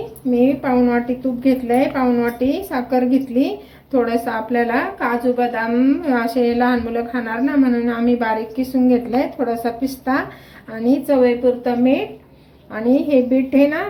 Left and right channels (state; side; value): identical; both; correlation 1.00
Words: मी पाऊण वाटी तूप घेतले, पाऊण वाटी साखर घेतली, थोडंसं आपल्याला काजू बदाम असे लहान मुलं खाणार ना म्हणून आम्ही बारीक किसून घेतले, थोडासा पिस्ता आणि चवीपुरतं मीठ। आणि हे बीट आहे ना,